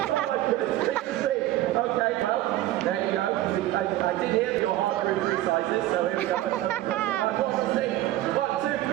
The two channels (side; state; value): left; quieter; 15.1 dB